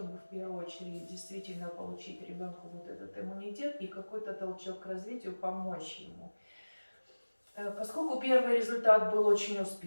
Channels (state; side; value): inverted; both; correlation -1.00